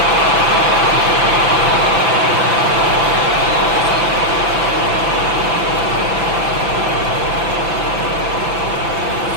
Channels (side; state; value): left; late; 6.0 ms